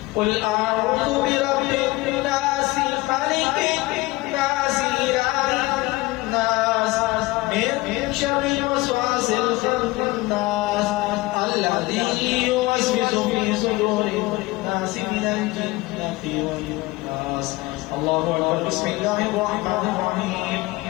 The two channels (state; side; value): quieter; right; 20.8 dB